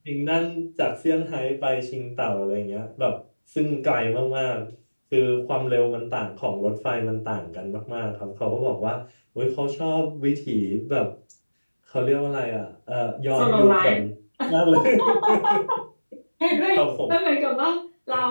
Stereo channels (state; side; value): inverted; both; correlation -1.00